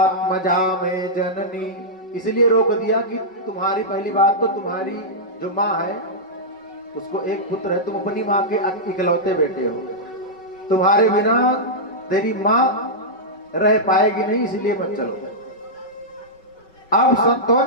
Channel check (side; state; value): right; late; 5.3 ms